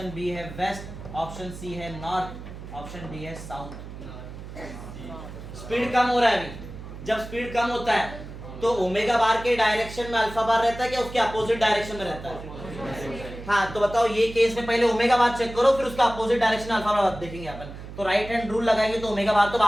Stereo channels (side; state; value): right; noise; hum, 12 dB below the sound